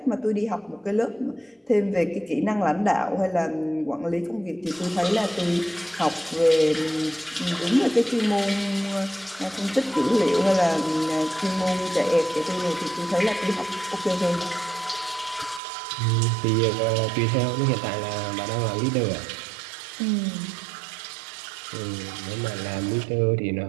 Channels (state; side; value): drops out; left; at 15.6 s